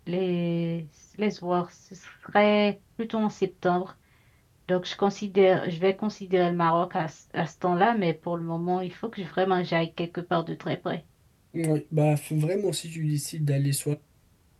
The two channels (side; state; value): both; identical; correlation 1.00